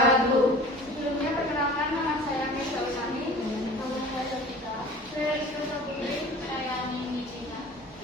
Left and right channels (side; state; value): both; normal; correlation 0.42